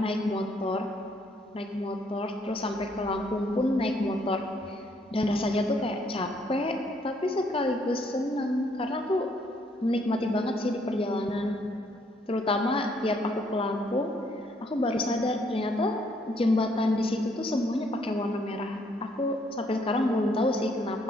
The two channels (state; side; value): normal; both; correlation 0.68